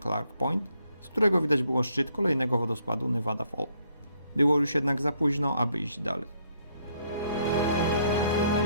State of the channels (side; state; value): both; inverted; correlation -0.71